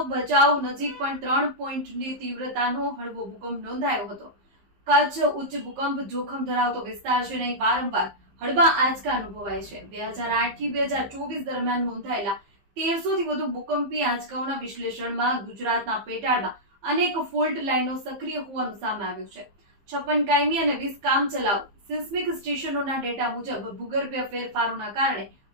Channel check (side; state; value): left; late; 15 ms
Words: ભચાઉ નજીક પણ 3 પોઈન્ટની તીવ્રતાનો હળવો ભૂકંપ નોંધાયો હતો। કચ્છ ઉચ્ચ ભૂકંપ જોખમ ધરાવતો વિસ્તાર છે અને વારંવાર હળવા આંચકા અનુભવાય છે। 2008 થી 2024 દરમિયાન નોંધાયેલા 1300 થી વધુ ભૂકંપી આંચકાઓના વિશ્લેષણમાં ગુજરાતના પેટાળમાં અનેક ફોલ્ટ લાઇનો સક્રિય હોવાનું સામે આવ્યું છે। 56 કાયમી અને 20 કામચલાઉ સિસ્મિક સ્ટેશનોના ડેટા મુજબ ભૂગર્ભીય ફેરફારોના કારણે